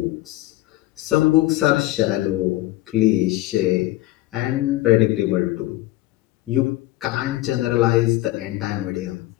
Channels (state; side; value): quieter; right; 17.4 dB